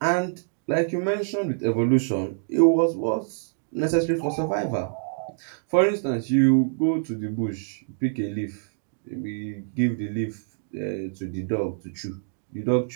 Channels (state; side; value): silent; left; digital silence